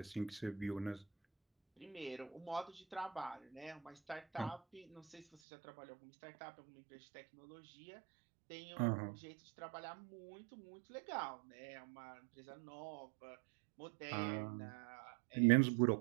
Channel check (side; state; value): left; drops out; at 5.2 s